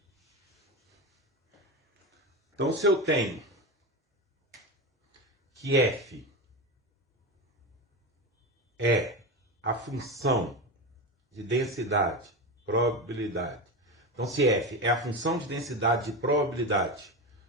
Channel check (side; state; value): both; normal; correlation 0.20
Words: Então, se eu tenho que f é a função de densidade, probabilidade. Então, se f é a função de densidade de probabilidade